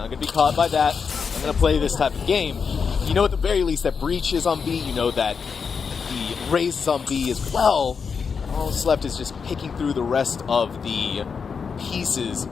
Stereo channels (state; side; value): quieter; right; 5.8 dB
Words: gonna be caught by that. I'm gonna play this type of game. You know at the very least that breach is on B. You know that the raise is on B as well. All that's left is just picking through the rest of the pieces,